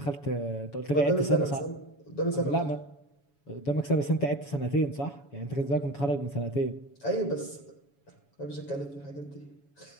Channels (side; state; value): right; late; 7.1 ms